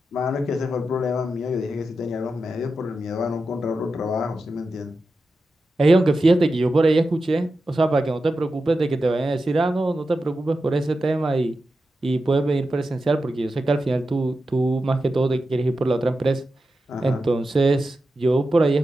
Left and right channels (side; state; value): both; normal; correlation 0.91